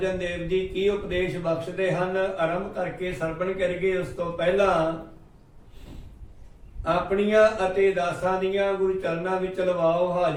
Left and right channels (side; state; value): both; identical; correlation 1.00